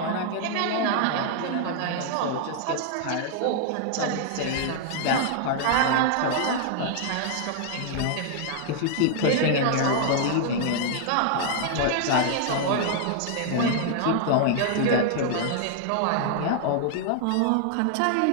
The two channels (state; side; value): different; both; correlation 0.00